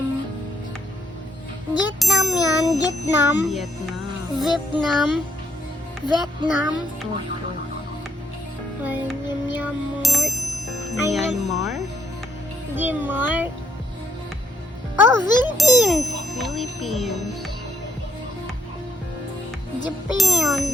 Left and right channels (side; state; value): both; normal; correlation 0.74